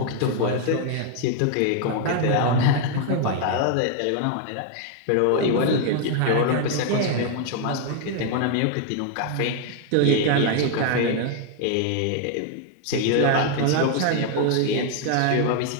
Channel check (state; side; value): different; both; correlation 0.00